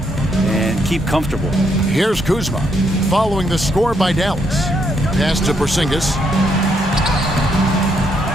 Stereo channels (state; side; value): normal; both; correlation 0.75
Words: and keep comfortable. Here's Kuzma following the score by Dallas. Pass to Porzingis.